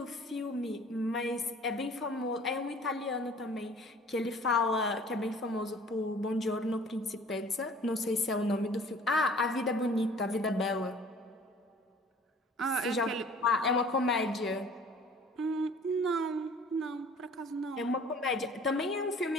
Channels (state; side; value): normal; both; correlation 0.50